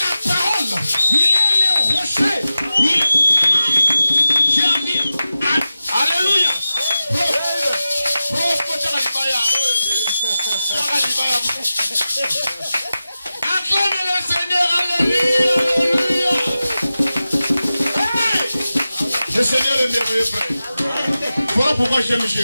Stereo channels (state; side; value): inverted; both; correlation -0.94